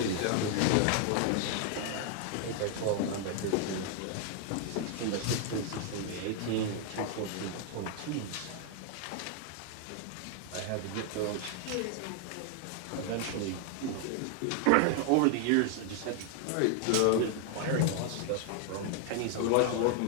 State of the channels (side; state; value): both; different; correlation 0.00